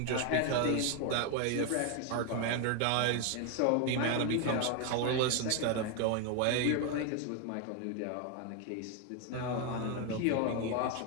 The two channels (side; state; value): both; different; correlation 0.01